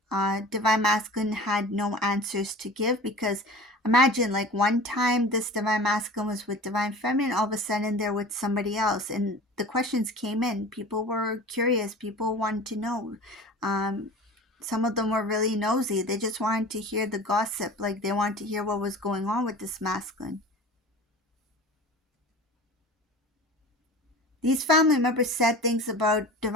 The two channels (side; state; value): both; normal; correlation 0.39